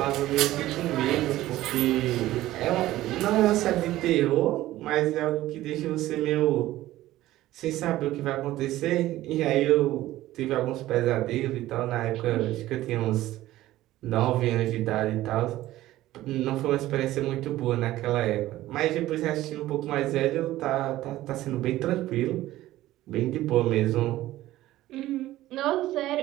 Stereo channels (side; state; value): left; quieter; 15.5 dB